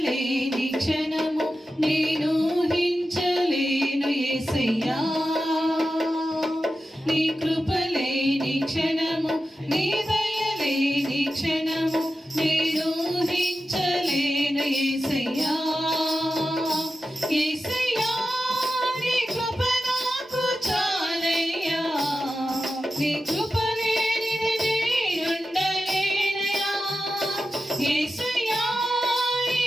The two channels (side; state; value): both; normal; correlation 0.92